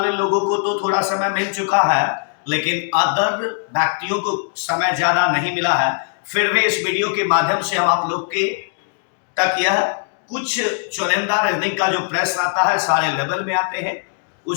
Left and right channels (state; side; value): silent; right; 64 dB below the other